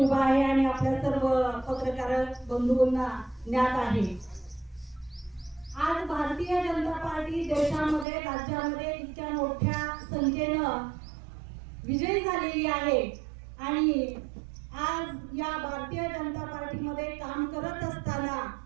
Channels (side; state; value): left; drops out; at 8.1 s